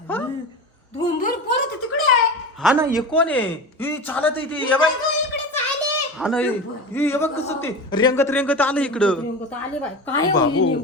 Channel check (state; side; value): normal; both; correlation 0.28